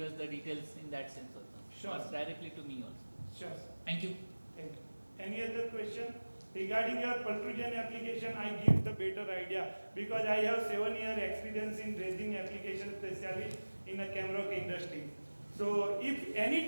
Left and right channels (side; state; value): both; inverted; correlation -1.00